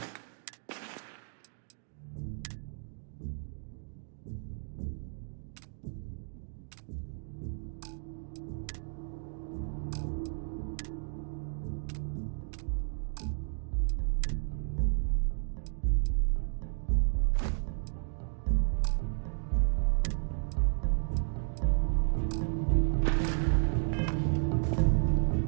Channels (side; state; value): left; silent; 56 dB below the other